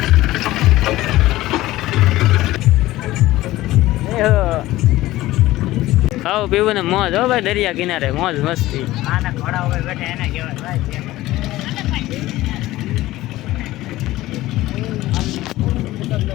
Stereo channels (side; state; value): right; quieter; 16.7 dB